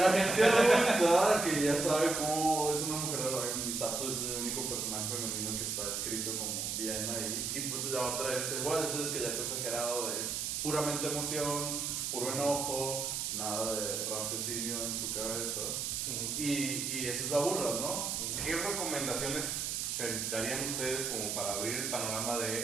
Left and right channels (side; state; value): right; noise; hiss, 1 dB below the sound